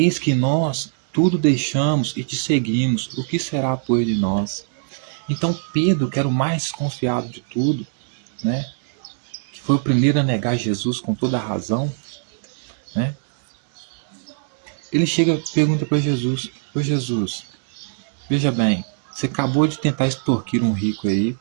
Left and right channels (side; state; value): left; silent; digital silence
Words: que nós tudo deixamos e te seguimos. O que será, pois, de nós? Então Pedro, que era o mais desconfiado de tudo, né? Que foi o primeiro a negar Jesus com toda a razão, né? Ele chega e pergunta para Jesus, ô Jesus, veja bem, você acabou de tentar extorquir um rico aí,